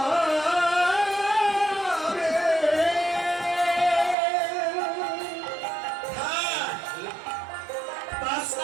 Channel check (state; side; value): drops out; left; at 4.2 s